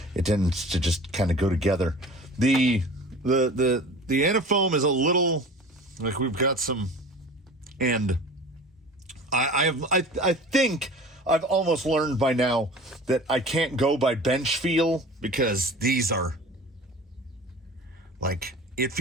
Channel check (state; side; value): normal; both; correlation 0.40